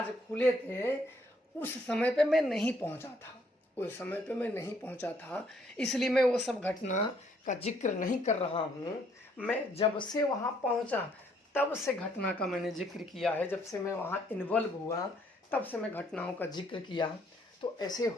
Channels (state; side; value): normal; both; correlation 0.67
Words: खुले थे। उस समय पे मैं नहीं पहुंचा था, उस समय पे मैं नहीं पहुंचा था, इसलिए मैं वो सब घटना का जिक्र नहीं कर रहा हूँ। मैं जब से वहाँ पहुँचा तब से घटना का मैंने जिक्र किया है। जब से मैं वहाँ इन्वॉल्व हुआ तब से मैं घटनाओं का जिक्र किया। तो ऐसे